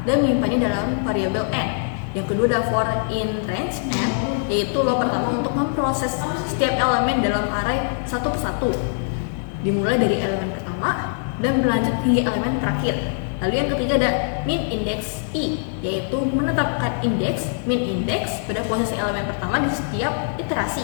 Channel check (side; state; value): right; silent; digital silence